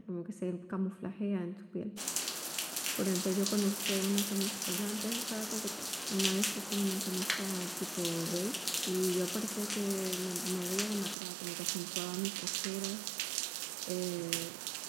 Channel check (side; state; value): left; drops out; at 11.2 s